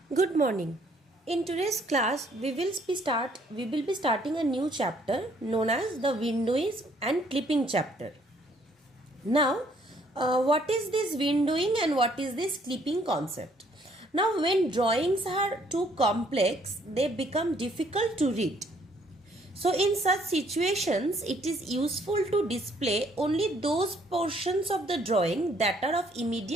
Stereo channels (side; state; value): both; normal; correlation 0.64